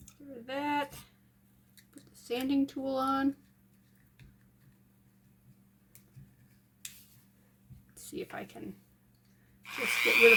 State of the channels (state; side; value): identical; both; correlation 1.00